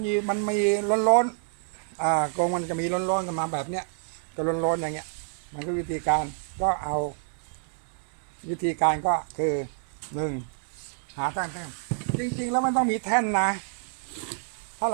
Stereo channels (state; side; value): silent; left; 60 dB below the other